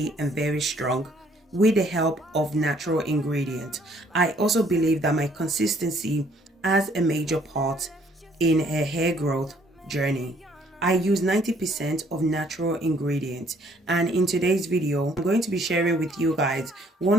and very strong with the help of natural ingredients. I also believe that my consistency has a major part in a hair growth journey. I use 90% of natural ingredients, and in today's video I'm going to be sharing with you guys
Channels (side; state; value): both; normal; correlation 0.63